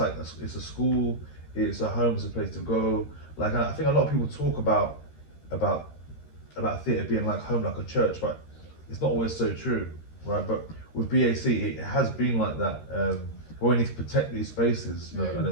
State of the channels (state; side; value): late; right; 13 ms